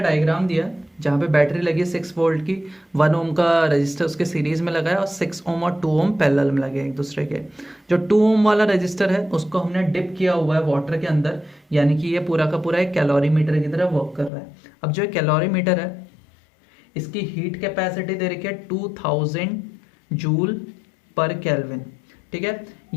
दिया जहाँ पे battery लगी है 6 वोल्ट की, 1 ओम का रजिस्टर उसके सीरीज में लगा है और 6 ओम और 2 ओम पैरेलल में लगे एक दूसरे के। जो 2 ओम वाला रजिस्टर है उसको हमने डिप किया हुआ है वाटर के अंदर, यानी कि ये पूरा का पूरा एक कैलोरीमीटर की तरह वर्क कर रहा है। अब जो कैलोरीमीटर है इसकी हीट कैपेसिटी दे रखी है 2000 जूल पर केल्विन, ठीक है।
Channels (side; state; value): right; drops out; at 14.3 s